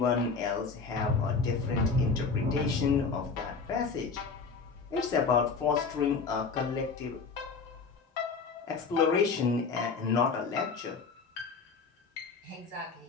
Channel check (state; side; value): quieter; right; 4.8 dB